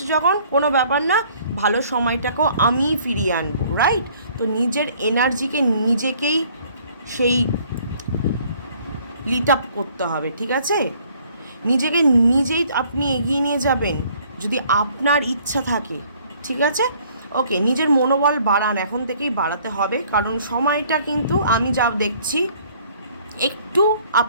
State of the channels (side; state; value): both; inverted; correlation -0.59